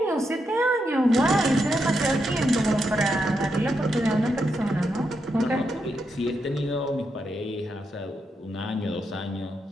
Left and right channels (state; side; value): normal; both; correlation 0.83